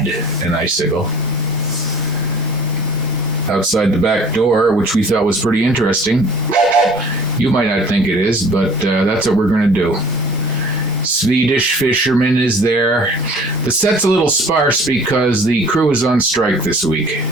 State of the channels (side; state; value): both; normal; correlation 0.49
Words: an icicle, outside the back door, which we thought was pretty interesting. You might not think it is, but that's what we're going to do. Swedish fisherman is there. The set's a little sparse because the crew is on strike this week.